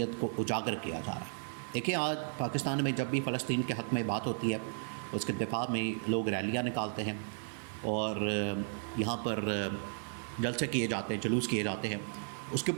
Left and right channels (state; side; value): silent; left; 55 dB below the other